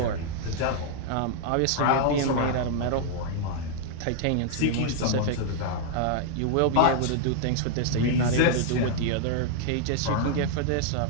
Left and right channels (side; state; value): both; different; correlation -0.01